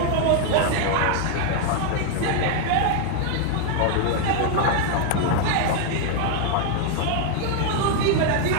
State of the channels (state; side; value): different; both; correlation 0.00